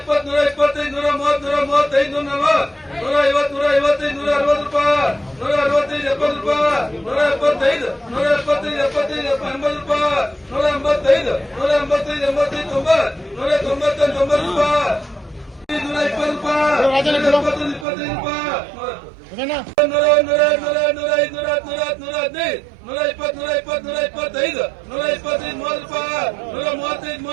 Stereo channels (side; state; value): left; drops out; at 17.9 s